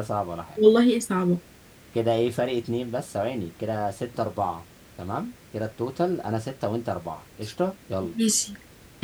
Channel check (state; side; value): identical; both; correlation 1.00